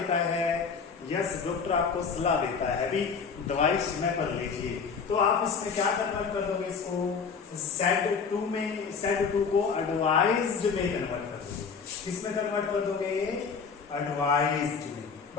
है? यस, डॉक्टर आपको सलाह देता है, अभी दवाई समय पर लीजिए। तो आप इसमें क्या कन्वर्ट कर दोगे इसको? सेड टू में, सेड टू को एडवाइज्ड में कन्वर्ट कर दोगे। किसमें कन्वर्ट कर दोगे? एडवाइज्ड में।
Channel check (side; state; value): right; quieter; 5.6 dB